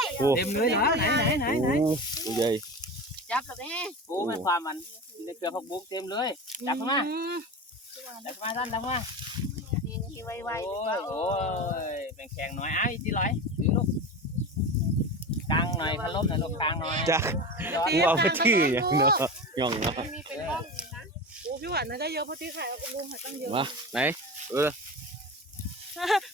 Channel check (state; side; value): normal; both; correlation 0.27